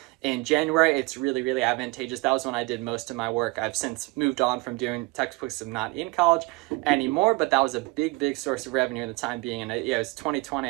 in January, it's really, really advantageous. That was when I did most of my work. I've since moved on from doing textbooks. I'm not in college anymore, but that was a big, big source of revenue in the time being. And it was 2020.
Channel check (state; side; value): quieter; left; 24.7 dB